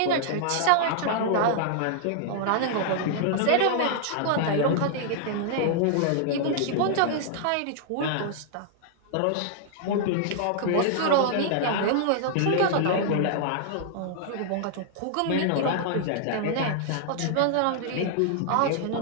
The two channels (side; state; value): both; different; correlation -0.01